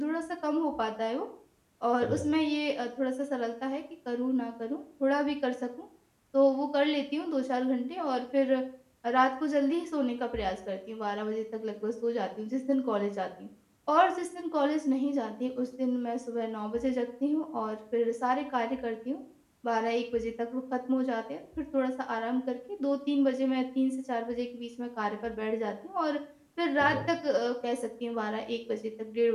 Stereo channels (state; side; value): identical; both; correlation 1.00